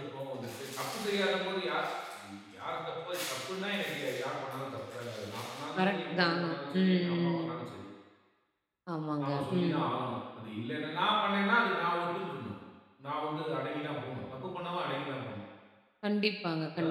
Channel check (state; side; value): identical; both; correlation 1.00